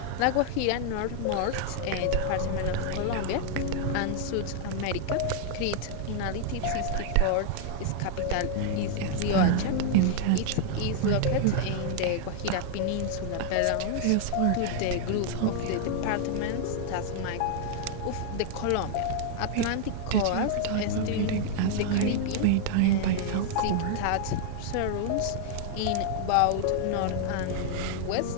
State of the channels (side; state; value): both; different; correlation 0.00